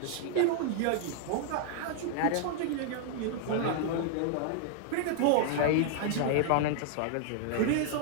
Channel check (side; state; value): both; different; correlation 0.00